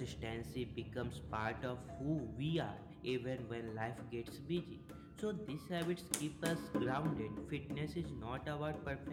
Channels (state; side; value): identical; both; correlation 1.00